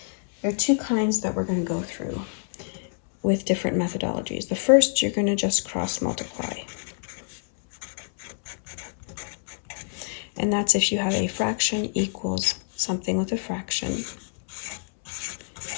There are two kinds that we're going to go through with different methodologies. The first, you're going to just cross multiply. And that's if you have a fraction equals something with a fraction,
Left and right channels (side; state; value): right; silent; 61 dB below the other